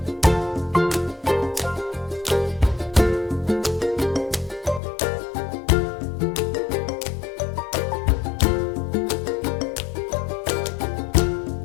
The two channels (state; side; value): drops out; right; at 4.8 s